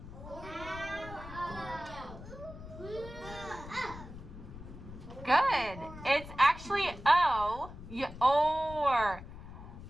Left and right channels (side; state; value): left; noise; rumble, 13 dB below the sound